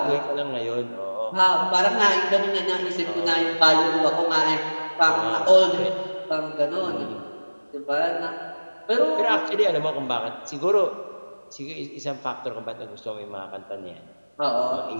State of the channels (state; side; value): inverted; both; correlation -1.00